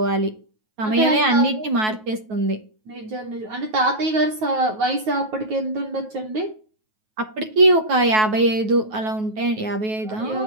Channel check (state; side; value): late; left; 9.3 ms